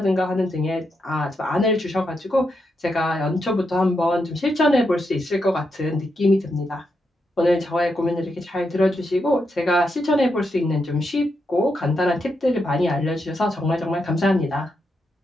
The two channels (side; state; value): both; normal; correlation 0.83